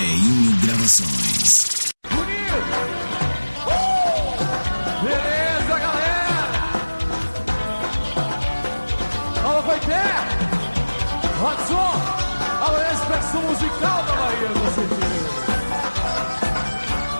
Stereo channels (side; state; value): both; inverted; correlation -1.00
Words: Gravações. Beleza, galera? Alô, Coité! Rodson! Alô, expressão musical da Bahia, com certeza.